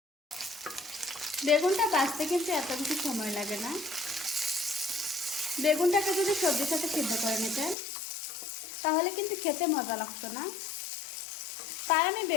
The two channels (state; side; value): drops out; right; at 7.8 s